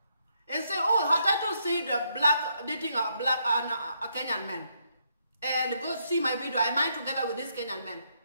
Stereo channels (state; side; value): inverted; both; correlation -0.76